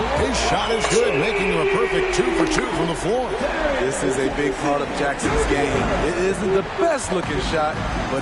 His shot is good, making him a perfect 2 for 2 from the floor. This is a big part of Jackson's game. It isn't the best looking shot,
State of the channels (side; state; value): both; identical; correlation 1.00